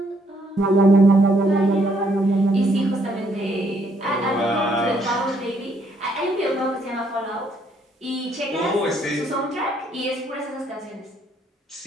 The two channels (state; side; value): normal; both; correlation 0.70